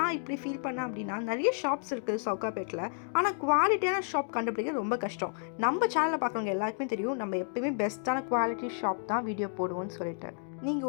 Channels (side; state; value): right; silent; digital silence